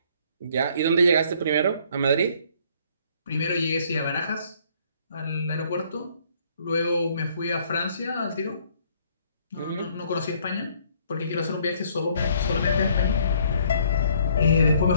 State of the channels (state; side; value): inverted; both; correlation -0.62